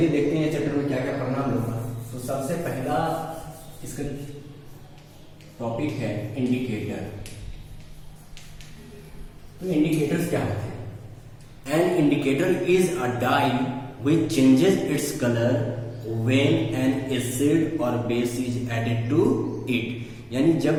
देखते हैं चैप्टर में क्या क्या पढ़ना हम लोग का। तो सबसे पहला इसका टॉपिक है इंडिकेटर। तो इंडिकेटर्स क्या होते हैं? An indicator is a dye which changes its colour when an acid और base is added to it. यानी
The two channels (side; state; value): both; identical; correlation 1.00